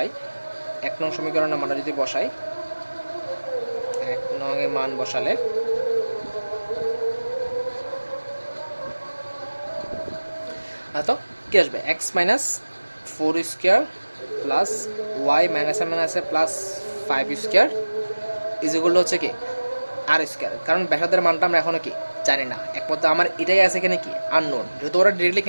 1 নং সমীকরণের মানটা যদি বসাই, 1 নং এর মান বসালে তো কি আসবে, x minus 4 square plus y মাইনাসে মাইনাসে +5 স্কোয়ার ইজ ইকুয়াল টু হচ্ছে কি আর স্কোয়ার। কারণ ব্যাসার্ধের মানটা আমরা এখনো কি জানি না, একমাত্র আমার এটাই আছে এখানে কি আননোন। যেহেতু ওরা ডিরেক্টলি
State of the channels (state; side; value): inverted; both; correlation -1.00